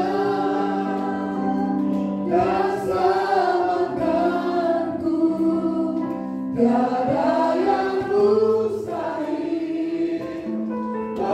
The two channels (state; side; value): identical; both; correlation 1.00